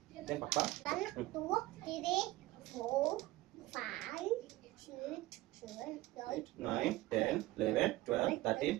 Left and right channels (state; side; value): quieter; left; 18.1 dB